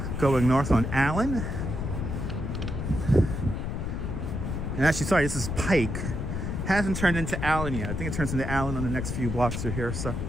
Going north on Allen. And actually, sorry, this is Pike. Hasn't turned into Allen yet. I think it turns into Allen on the next few blocks through here, so.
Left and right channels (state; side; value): noise; left; rumble, 3 dB below the sound